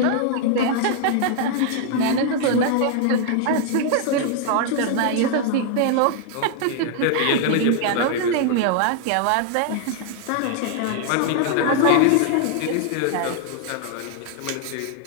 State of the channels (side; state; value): both; different; correlation 0.00